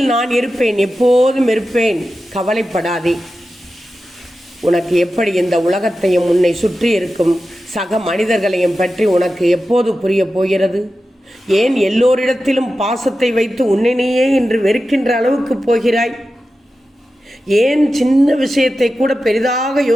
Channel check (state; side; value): normal; both; correlation 0.92